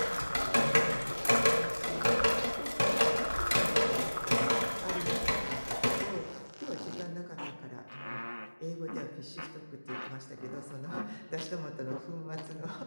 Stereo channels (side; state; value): both; inverted; correlation -1.00